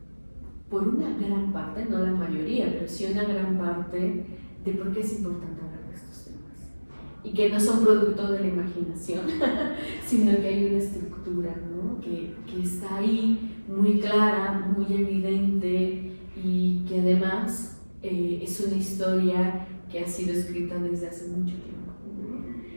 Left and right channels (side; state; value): both; inverted; correlation -1.00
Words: por una gran parte, no la mayoría, pero sí una gran parte, de por qué es importante hablar de estos temas. Y que no son producto de la imaginación, sino que hay una estructura, ¿no? que está ahí muy clara, muy evidente, y que además es una historia que ha sido escrita desde hace mucho tiempo,